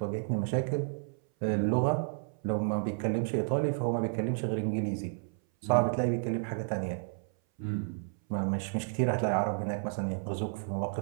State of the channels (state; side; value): silent; left; 57 dB below the other